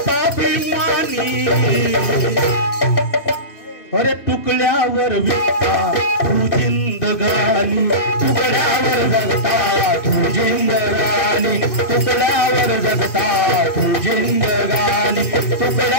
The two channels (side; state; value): right; late; 2.6 ms